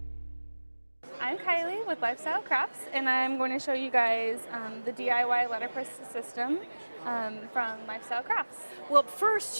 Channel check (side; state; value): both; inverted; correlation -1.00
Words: I'm Kylie with Lifestyle Crafts, and I'm going to show you guys the DIY letterpress system from Lifestyle Crafts. Well, first,